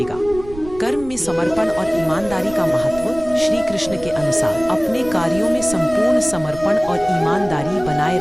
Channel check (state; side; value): noise; right; rumble, 16 dB below the sound